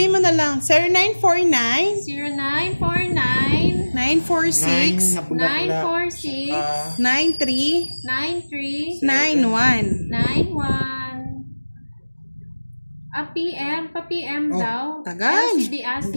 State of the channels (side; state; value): both; inverted; correlation -1.00